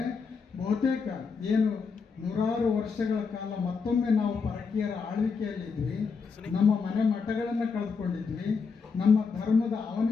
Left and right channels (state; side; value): quieter; right; 5.2 dB